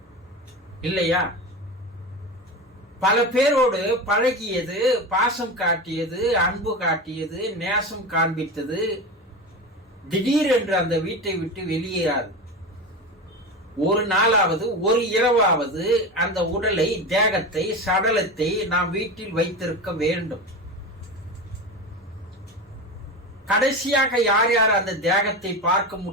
இல்லையா? பல பேரோடு பழகியது, பாசம் காட்டியது, அன்பு காட்டியது, நேசம் காண்பித்தது. திடீரென்று அந்த வீட்டை விட்டு வெளியேறாது. ஒரு நாளாவது ஒரு இரவாவது அந்த உடலை, தேகத்தை, சடலத்தை நாம் வீட்டில் வைத்திருக்க வேண்டும். கடைசியாக யார் யார் அந்த தேகத்தை பார்க்க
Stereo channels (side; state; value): both; normal; correlation 0.24